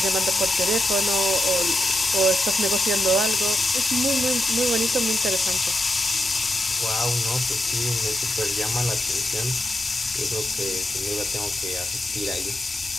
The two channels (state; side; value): normal; both; correlation 0.86